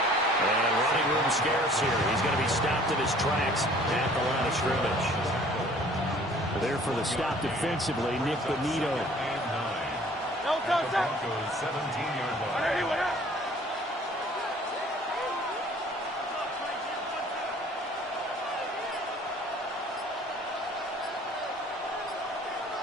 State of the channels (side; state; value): both; normal; correlation 0.53